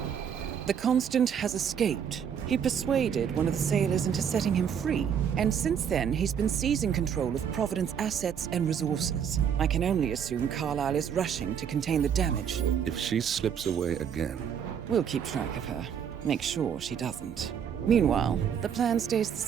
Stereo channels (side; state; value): left; quieter; 8.0 dB